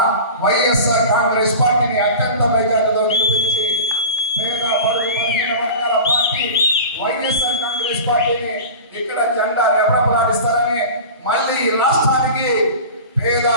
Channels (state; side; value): inverted; both; correlation -0.34